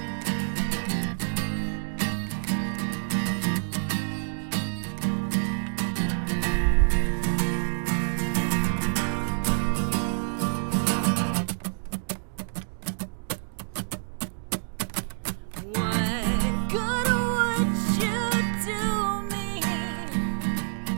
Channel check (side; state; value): left; silent; digital silence